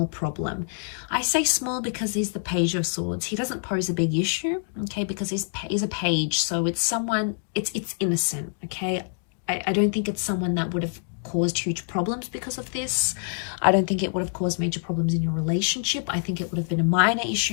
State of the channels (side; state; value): right; silent; digital silence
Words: problem. I say small because he's the Page of Swords. He doesn't pose a big issue, okay, because he's a page, so it's someone, it's innocent, okay? I don't think it's someone that would have caused huge problems because of this. I don't think it would have caused major problems in your relationship. I think it would have been a minor